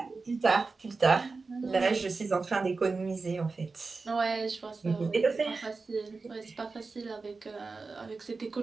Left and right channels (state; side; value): quieter; left; 4.1 dB